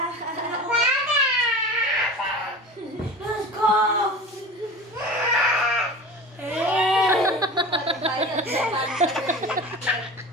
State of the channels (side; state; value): both; normal; correlation 0.35